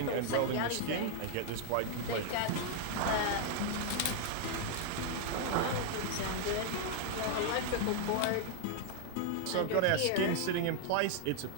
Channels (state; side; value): different; both; correlation 0.00